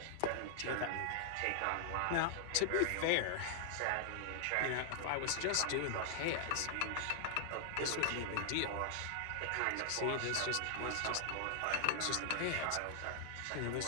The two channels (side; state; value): both; different; correlation -0.01